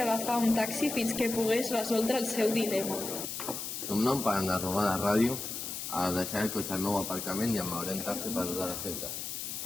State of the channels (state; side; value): noise; left; hiss, 6 dB below the sound